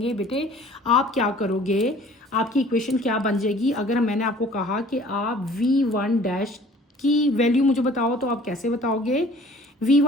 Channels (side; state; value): both; normal; correlation 0.51